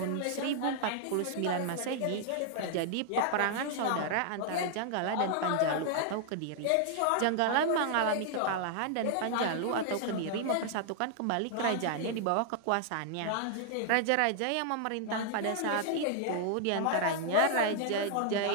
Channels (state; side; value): different; both; correlation -0.01